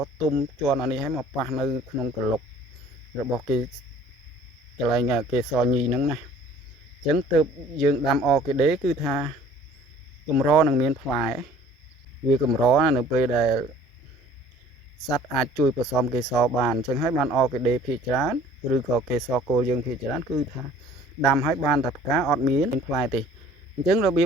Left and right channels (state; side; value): normal; both; correlation 0.52